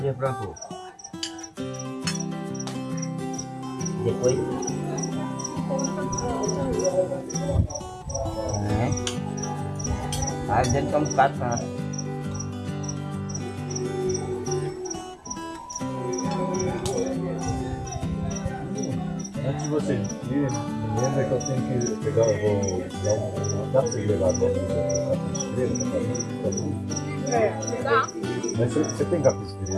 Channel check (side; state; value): both; identical; correlation 1.00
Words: plantou. Depois. Aí dentro tem um bocado pra. Antes de você ir, lembra que eu tenho que pegar, eu vou dar dá pra você levar a capisteira pra fazer? Dá. Mas você tem